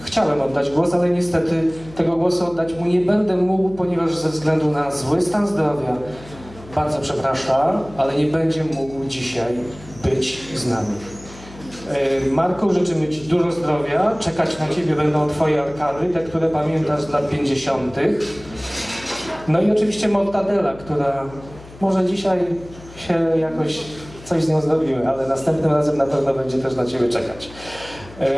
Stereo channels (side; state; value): left; noise; hum, 19 dB below the sound